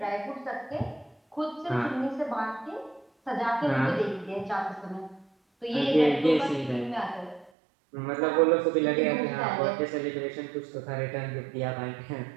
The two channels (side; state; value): left; drops out; at 7.5 s